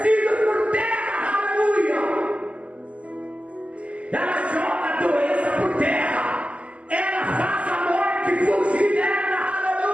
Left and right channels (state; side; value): late; left; 0.062 ms